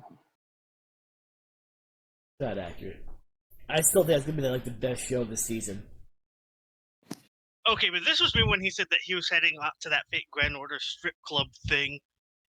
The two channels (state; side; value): identical; both; correlation 1.00